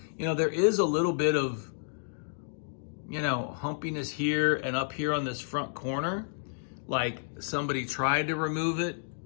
there is a little bit of humpiness here and up here on this front corner, like somebody tried to remove it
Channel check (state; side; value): silent; right; digital silence